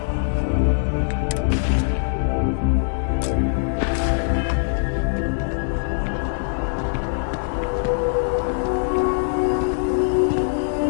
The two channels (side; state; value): right; silent; digital silence